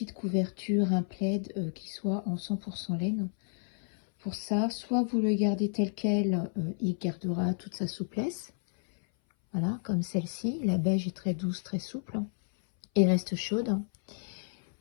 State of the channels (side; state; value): right; silent; 57 dB below the other